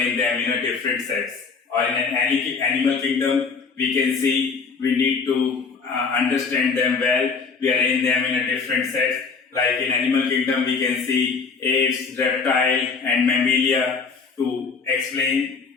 them in a different sets. Or in an animal kingdom we can see we need to understand them well, we arrange them in a different sets. Like in animal kingdom we can see apes, reptile and mammalia. To explain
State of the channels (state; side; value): quieter; right; 5.1 dB